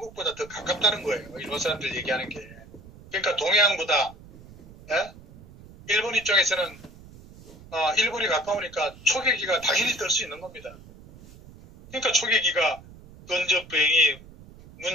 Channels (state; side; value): noise; right; rumble, 20 dB below the sound